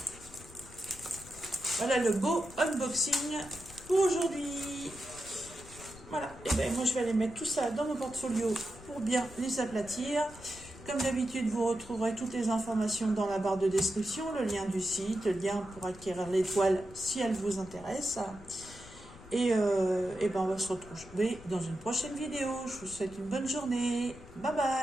Voilà le beau unboxing pour aujourd'hui. Voilà. Et bien, moi, je vais aller mettre tout ça dans mon portfolio pour bien les aplatir. Comme d'habitude, vous retrouverez toutes les informations dans la barre de description, le lien du site, le lien pour acquérir les toiles si elles vous intéressent. Et ben on va se retrouver dans une prochaine vidéo. Je vous souhaite une bonne journée. Bye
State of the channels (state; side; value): noise; left; rumble, 18 dB below the sound